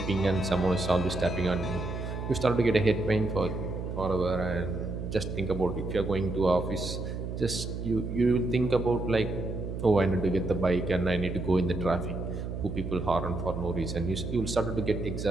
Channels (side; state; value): right; noise; hum, 5 dB below the sound